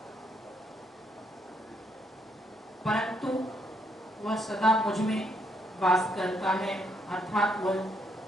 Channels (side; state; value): both; normal; correlation 0.74